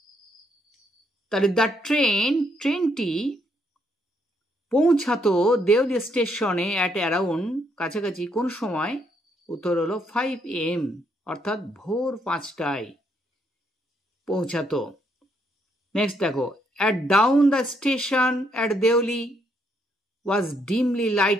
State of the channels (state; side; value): normal; both; correlation 0.73